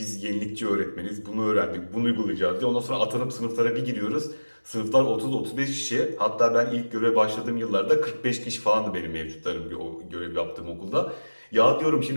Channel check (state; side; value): inverted; both; correlation -1.00